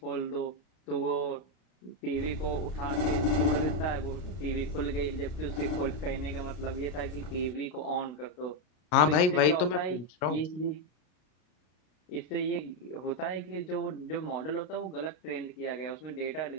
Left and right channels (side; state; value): right; late; 33 ms